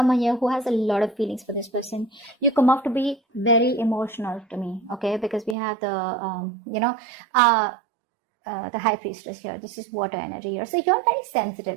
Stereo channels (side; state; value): left; drops out; at 5.6 s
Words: here who has a lot of feelings for this person. You come off to be very emotional to me, okay, because we have the, the high priestess here. This is water energy here. So you're very